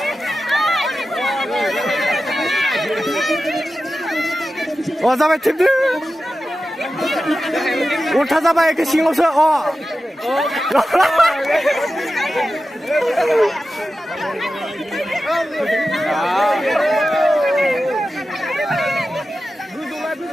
Oh, sampai tipdi. Ulta sampai ke singlo se. Oh.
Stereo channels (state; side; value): normal; both; correlation 0.93